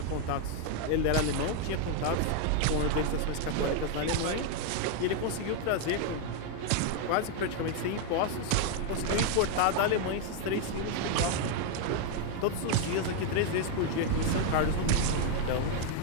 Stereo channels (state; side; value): different; both; correlation 0.00